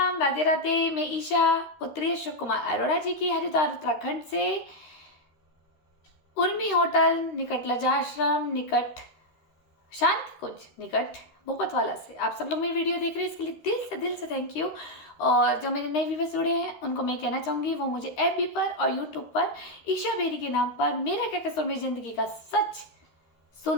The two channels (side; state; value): right; late; 13 ms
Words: राधे राधे। मैं ईशा, पुत्री अशोक कुमार अरोड़ा जी की हरिद्वार उत्तराखंड से उर्मी होटल निकट लजा आश्रम निकट शांति कुंज निकट भूपतवाला से आप सब लोग मेरी वीडियो देख रहे हैं, इसके लिए दिल से थैंक यू। और जो मेरे नए व्यूवर्स जुड़े हैं उनको मैं कहना चाहूँगी वो मुझे एफबी पर और यूट्यूब पर ईशा बेरी के नाम पर मेरा क्या कसूर मेरी ज़िंदगी का सच